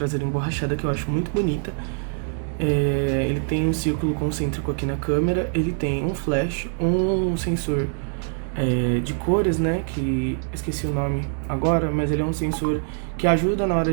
emborrachada que eu acho muito bonita. Ele tem um círculo concêntrico aqui na câmera, ele tem um flash, um sensor de cores, né, que esqueci o nome agora, mas ele é um sensor que ajuda na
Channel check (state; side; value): silent; left; 63 dB below the other